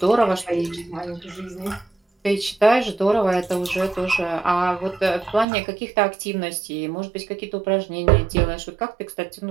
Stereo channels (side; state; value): left; drops out; at 5.5 s